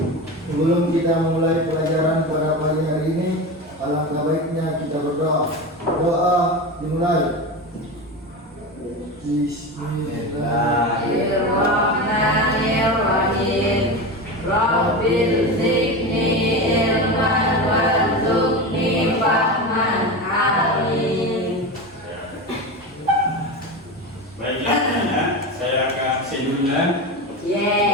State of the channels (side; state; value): both; normal; correlation 0.23